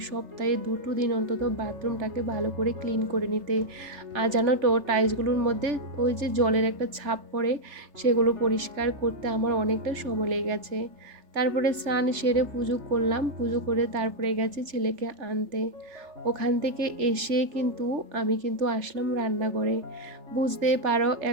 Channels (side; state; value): left; late; 3.3 ms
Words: 2টো দিন অন্তত বাথরুমটাকে ভালো করে ক্লিন করে নিতে। আর জানো তো, টাইলসগুলোর মধ্যে ওই যে জলের একটা ছাপ পড়ে, সেগুলো পরিষ্কার করতে আমার অনেকটা সময় লেগে গেছে। তারপরে স্নান সেরে পুজো করলাম, পুজো করে তারপরে গেছি ছেলেকে আনতে। ওখান থেকে এসে আমি আসলাম রান্নাঘরে। বুঝতেই পারো,